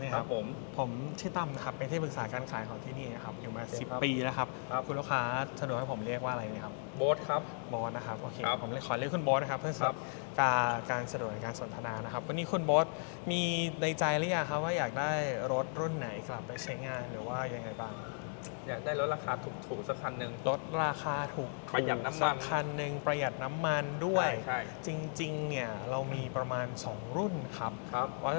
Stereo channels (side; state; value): right; silent; 54 dB below the other